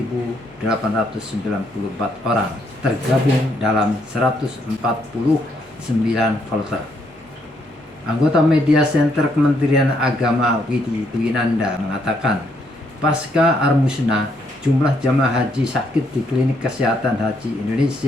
orang, tergabung dalam 149 kloter. Anggota Media Center Kementerian Agama Widi Dwinanda mengatakan, pasca Armusna, jumlah jamaah haji sakit di Klinik Kesehatan Haji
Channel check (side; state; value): both; normal; correlation 0.73